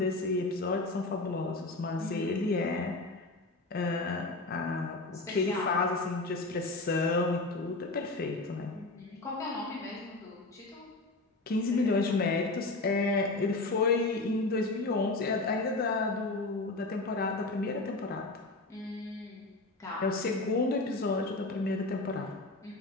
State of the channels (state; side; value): quieter; right; 3.1 dB